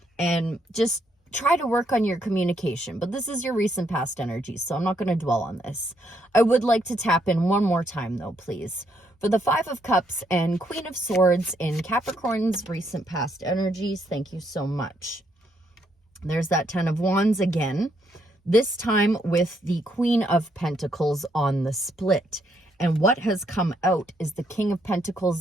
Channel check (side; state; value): both; normal; correlation 0.74